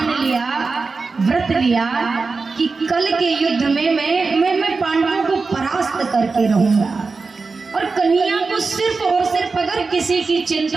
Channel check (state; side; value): quieter; left; 4.3 dB